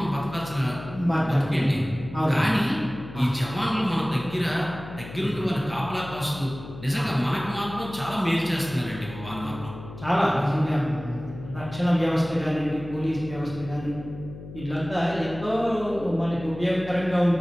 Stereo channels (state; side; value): noise; left; hum, 13 dB below the sound